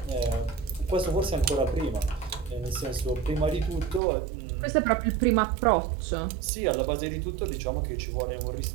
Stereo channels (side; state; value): left; drops out; at 4.0 s